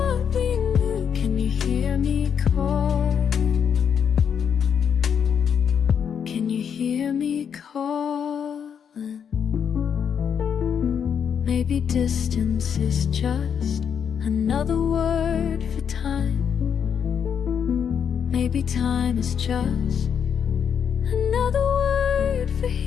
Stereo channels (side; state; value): right; quieter; 7.6 dB